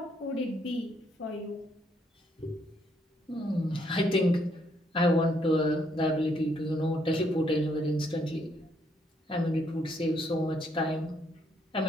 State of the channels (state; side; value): normal; both; correlation 0.72